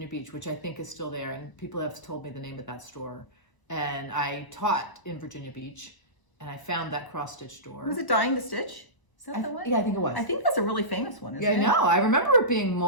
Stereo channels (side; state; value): right; late; 1.0 ms